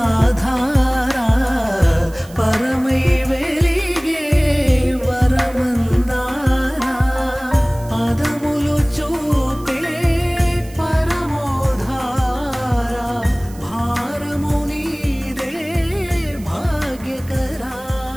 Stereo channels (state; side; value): noise; right; hiss, 22 dB below the sound